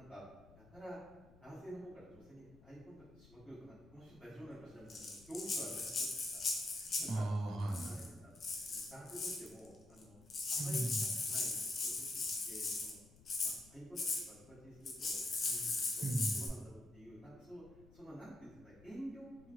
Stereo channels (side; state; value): left; noise; rumble, 22 dB below the sound